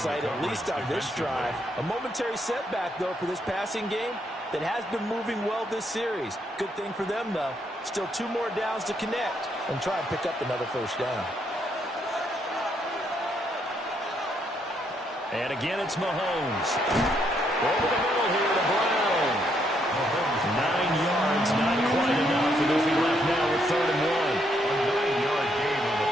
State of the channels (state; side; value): normal; both; correlation 0.74